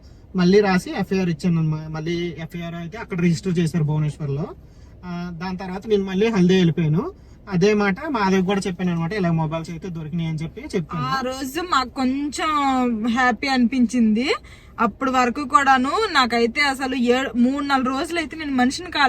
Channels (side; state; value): both; identical; correlation 1.00